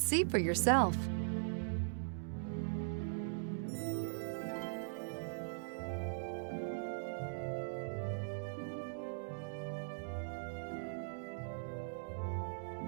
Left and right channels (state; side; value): silent; left; digital silence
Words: see for yourself.